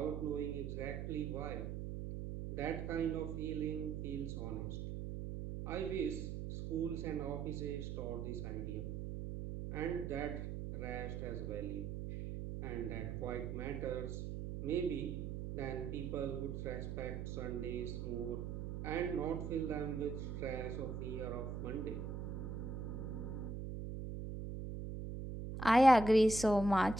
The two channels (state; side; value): noise; right; hum, 5 dB below the sound